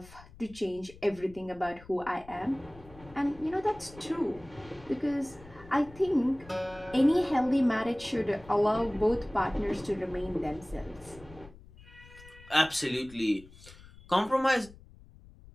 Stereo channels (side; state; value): left; noise; rumble, 21 dB below the sound